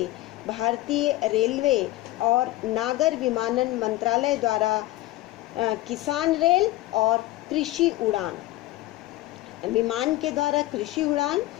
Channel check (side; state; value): right; quieter; 16.9 dB